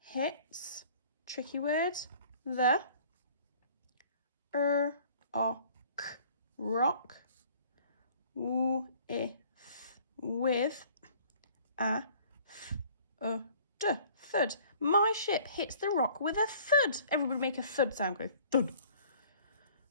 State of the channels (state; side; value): inverted; both; correlation -0.53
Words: Tricky word, the rock. With a thud. My ship hits the rock with a thud. Everybody make a thud sound. Go thud.